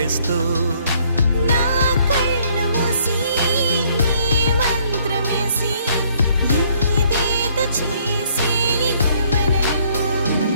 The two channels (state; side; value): inverted; both; correlation -0.65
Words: నా కళ్ళు మూసి నీ మంత్రమేసి ఏదేదో చేసి